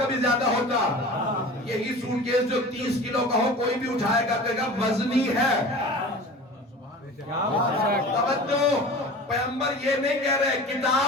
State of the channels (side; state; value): both; normal; correlation 0.38